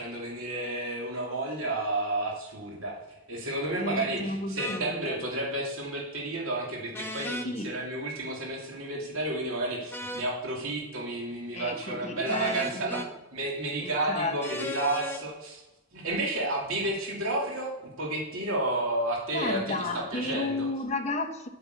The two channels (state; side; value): normal; both; correlation -0.10